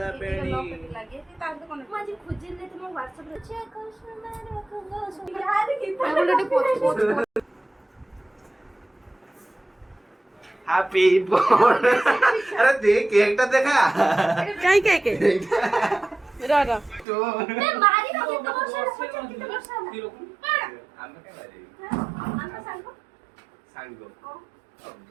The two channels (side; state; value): left; drops out; at 17.1 s